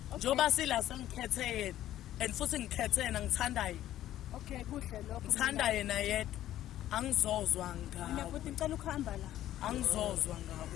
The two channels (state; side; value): quieter; right; 13.0 dB